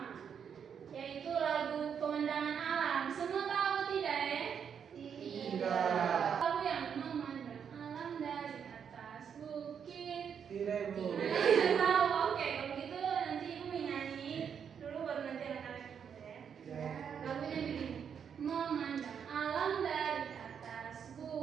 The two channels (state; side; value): quieter; left; 7.5 dB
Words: yaitu lagu Pemandangan Alam. Semua tahu tidak ya? Tidak. Lagu yang memandang alam dari atas bukit. Tidak Bu. Tidak tahu. Oke, kalau gitu nanti Ibu menyanyi dulu baru nanti anak-anak ikut ya. Lagunya begini. Memandang alam dari atas